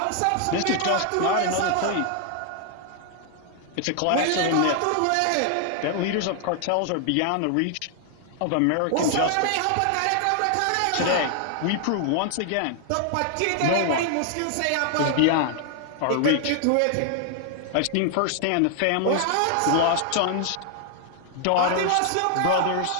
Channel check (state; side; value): different; both; correlation 0.00